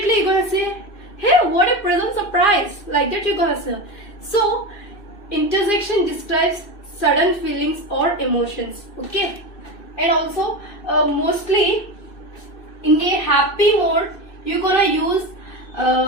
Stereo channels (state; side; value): late; right; 2.6 ms